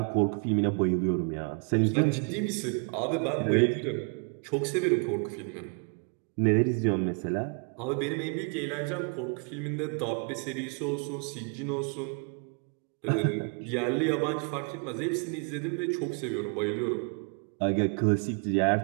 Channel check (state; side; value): quieter; left; 37.7 dB